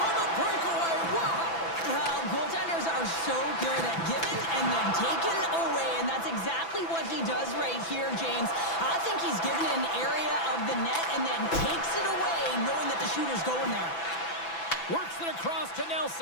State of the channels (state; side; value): late; right; 6.0 ms